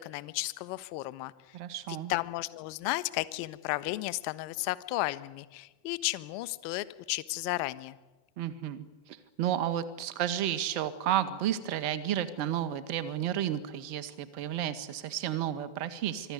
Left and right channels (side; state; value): left; late; 4.3 ms